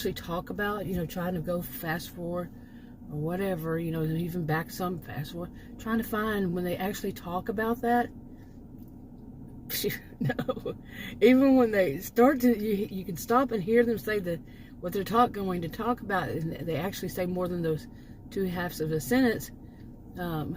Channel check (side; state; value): both; identical; correlation 1.00